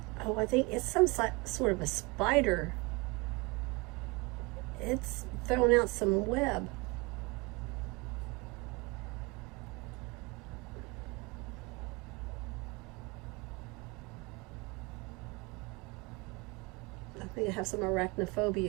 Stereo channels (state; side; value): quieter; left; 26.7 dB